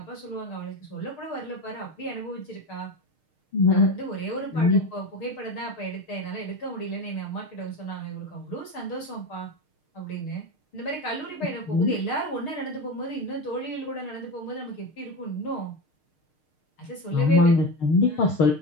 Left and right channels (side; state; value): right; late; 6.5 ms